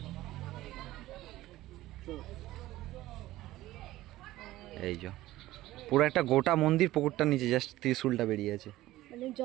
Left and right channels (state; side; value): quieter; left; 16.2 dB